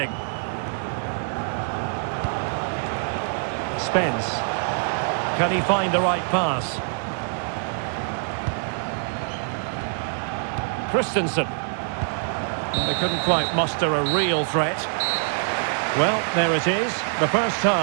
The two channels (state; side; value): silent; left; digital silence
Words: Spence. Can he find the right pass? Christensen. They couldn't quite muster a real threat. Well, there it is. The first